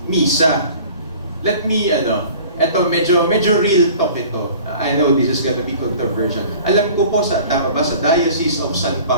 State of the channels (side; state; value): both; inverted; correlation -0.45